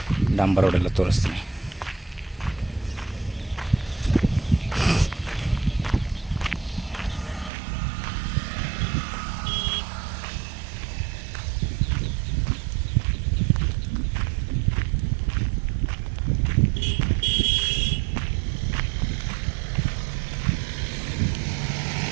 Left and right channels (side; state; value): left; drops out; at 7.5 s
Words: ಡಾಂಬರ್ ರೋಡೆಲ್ಲ ತೋರಿಸ್ತೀನಿ.